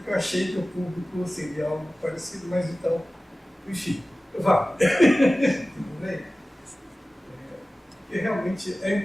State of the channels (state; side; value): normal; both; correlation 0.96